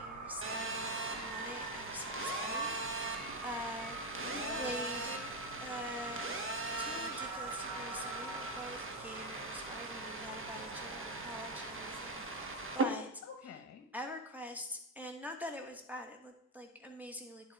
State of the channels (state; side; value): normal; both; correlation 0.09